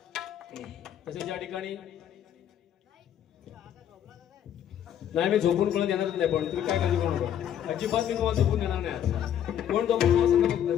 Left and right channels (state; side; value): quieter; right; 10.0 dB